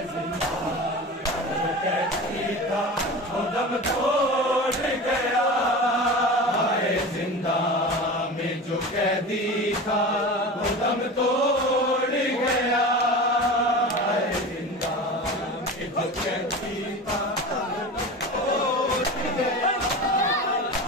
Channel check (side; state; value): both; normal; correlation 0.31